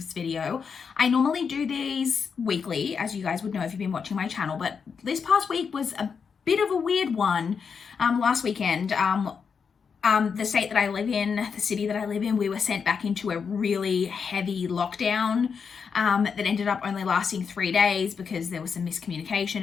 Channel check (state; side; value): quieter; right; 6.1 dB